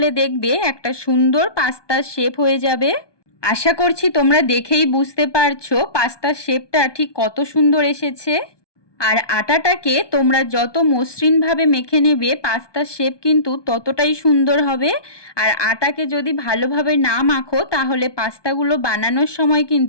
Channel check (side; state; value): right; late; 1.2 ms